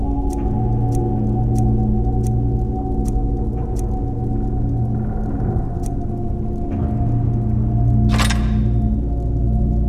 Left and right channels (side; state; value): both; identical; correlation 1.00